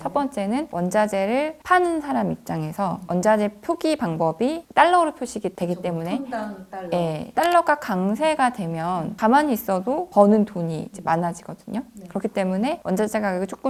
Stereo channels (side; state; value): both; identical; correlation 1.00